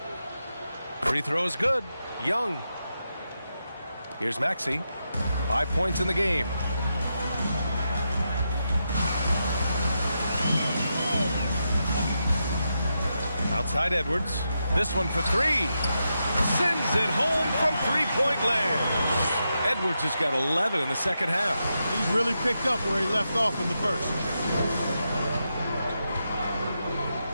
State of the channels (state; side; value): inverted; both; correlation -0.86